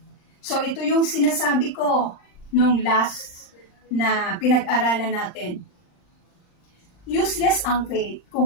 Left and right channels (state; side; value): late; right; 39 ms